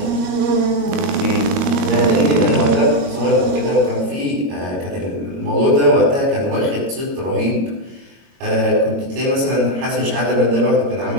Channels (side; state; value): left; late; 22 ms